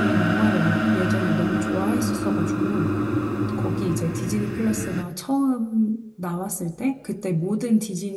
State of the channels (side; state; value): both; identical; correlation 1.00